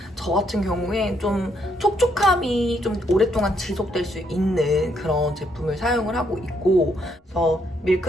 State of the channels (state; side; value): normal; both; correlation 0.73